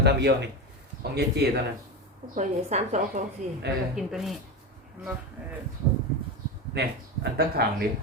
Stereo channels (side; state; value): both; normal; correlation 0.19